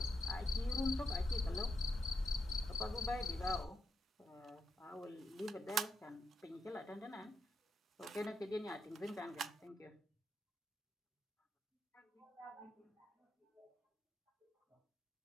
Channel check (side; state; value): both; normal; correlation 0.83